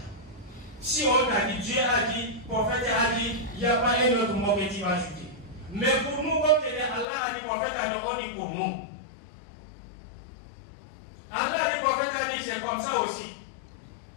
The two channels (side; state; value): right; drops out; at 7.1 s